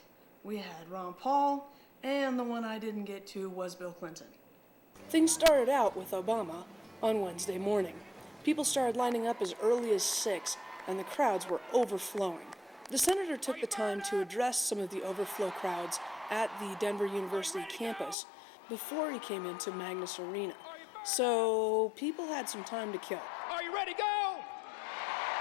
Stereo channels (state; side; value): drops out; right; at 18.2 s